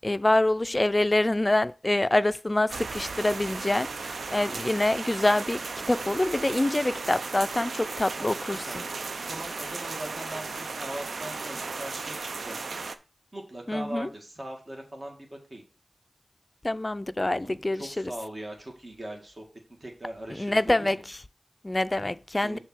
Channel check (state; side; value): normal; both; correlation 0.98